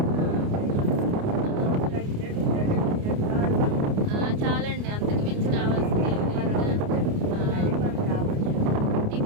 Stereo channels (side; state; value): left; late; 29 ms